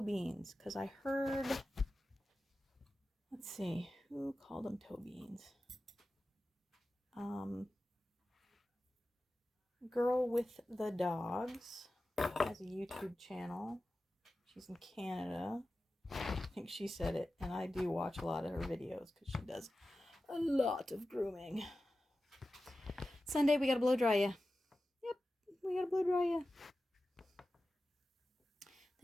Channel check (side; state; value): both; normal; correlation 0.94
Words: Because I heard, let's see, who called them toe beans? Girl with the Dogs has a YouTube channel. She's in Canada. I think she said it, and I do watch a lot of her videos because she does a lot of grooming. Sunday, we gotta blow dry you. Yep, we gotta blow dry you.